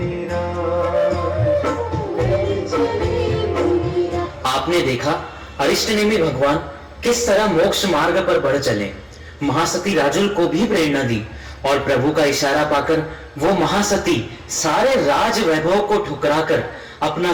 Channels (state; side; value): identical; both; correlation 1.00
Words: आपने देखा अरिष्टनेमी भगवान किस तरह मोक्ष मार्ग पर बढ़ चले। महासती राजुल को भी प्रेरणा दी और प्रभु का इशारा पाकर वो महासती सारे राज वैभव को ठुकराकर अपना